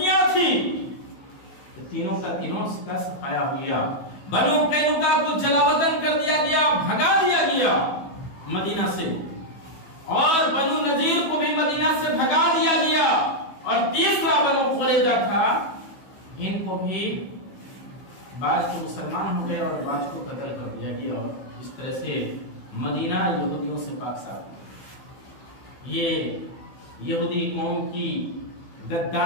تھی، تینوں کا صفایا ہو گیا. بنو قینقاع کو جلا وطن کر دیا گیا، بھگا دیا گیا مدینہ سے، اور بنو نذیر کو بھی مدینہ سے بھگا دیا گیا، اور تیسرا بنو قریظہ تھا، ان کو بھی بعض کے مسلمان ہو گئے اور بعض کو قتل کر دیا گیا، اور اس طرح سے مدینہ یہودیوں سے پاک صاف. یہ یہودی قوم کی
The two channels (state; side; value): late; right; 15 ms